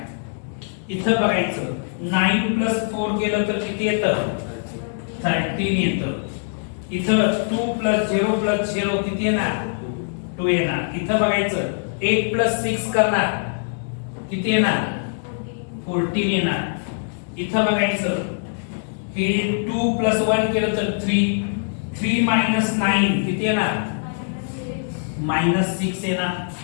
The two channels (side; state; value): right; silent; digital silence